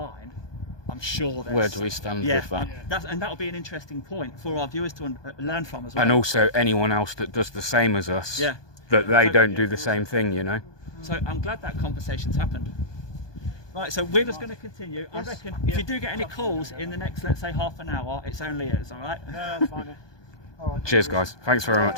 I'm sure there's... Where do we stand with that? And that'll be an interesting point for our viewers to learn from as well. And also anyone else that does the same as us, that they don't do the same thing, you know. So I'm glad that conversation's happened. Right, so we're just going to continue. I reckon if you do get any calls in the next, let's say, half an hour, it's only us, all right? No, that's fine. All right. Cheers, guys. Thanks very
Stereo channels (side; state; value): right; late; 1.2 ms